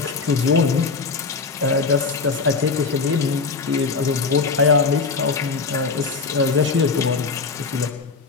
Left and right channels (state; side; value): quieter; right; 4.6 dB